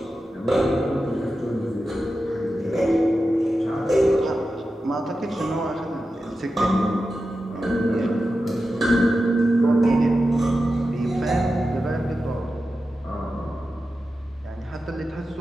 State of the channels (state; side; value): normal; both; correlation 0.91